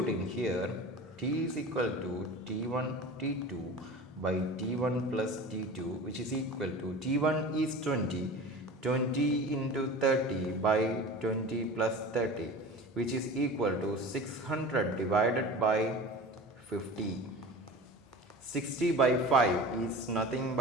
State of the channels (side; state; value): both; normal; correlation 0.35